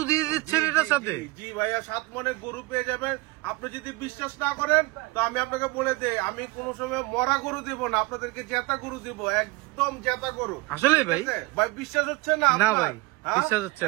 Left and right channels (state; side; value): quieter; left; 22.7 dB